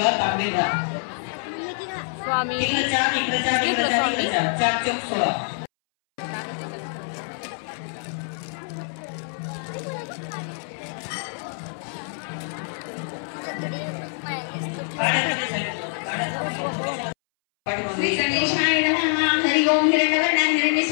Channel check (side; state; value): right; silent; 62 dB below the other